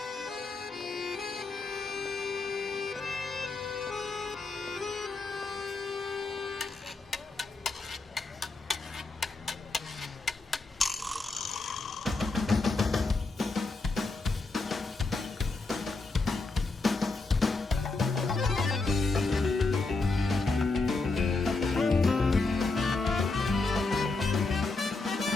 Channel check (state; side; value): quieter; right; 3.6 dB